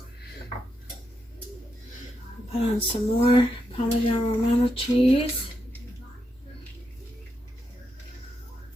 Put on some more Parmesan Romano cheese.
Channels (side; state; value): both; normal; correlation 0.83